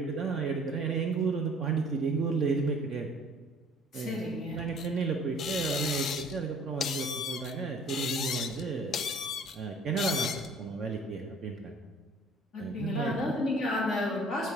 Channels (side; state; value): both; normal; correlation 0.53